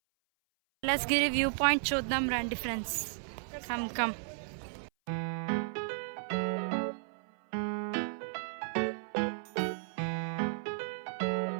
Kailasagiri view point చూద్దాం రండి ఫ్రెండ్స్. Come come.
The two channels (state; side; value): silent; left; 55 dB below the other